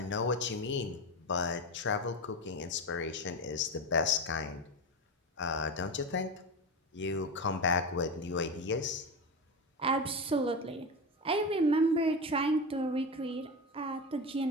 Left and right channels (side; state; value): both; normal; correlation 0.20